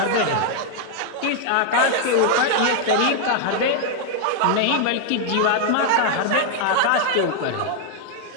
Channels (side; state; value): both; different; correlation 0.00